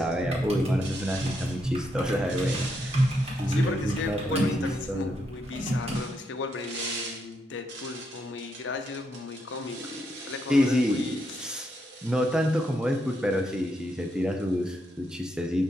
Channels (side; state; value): both; normal; correlation 0.79